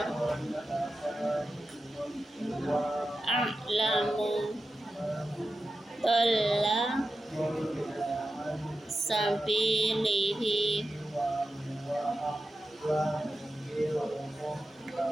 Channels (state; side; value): normal; both; correlation 0.92